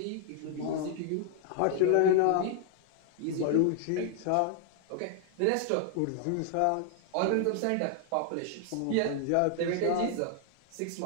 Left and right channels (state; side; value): different; both; correlation 0.00